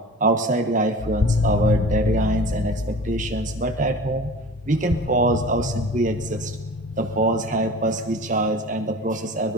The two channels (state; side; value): normal; both; correlation 0.38